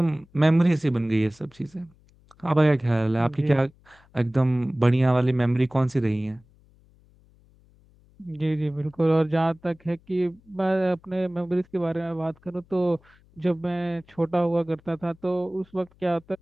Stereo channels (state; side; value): noise; left; hum, 30 dB below the sound